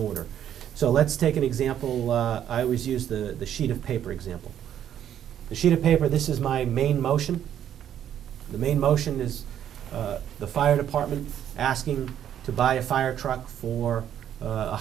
So let's take an example. I always use the sheet of paper example. The sheet of paper, this is my main motion. The main motion is the fire department asking to buy a fire truck for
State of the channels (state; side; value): quieter; left; 10.2 dB